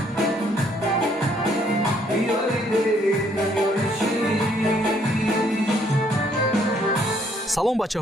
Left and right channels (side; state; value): both; normal; correlation 0.67